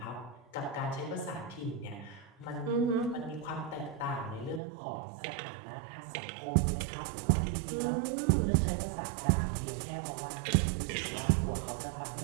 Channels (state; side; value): drops out; left; at 4.6 s